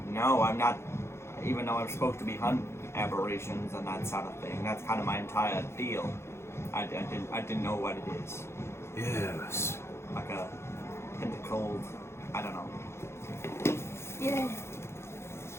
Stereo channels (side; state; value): right; late; 0.13 ms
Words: know. I'm not, even though I'm supposed to be hunting aberrations and that sort of thing. That's kind of my entire deal. I didn't know what it is. Yes. Like a pentacled, I don't know. Yeah.